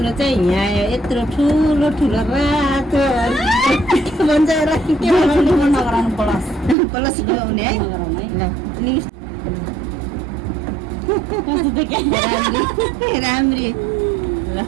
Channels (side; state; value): left; drops out; at 6.8 s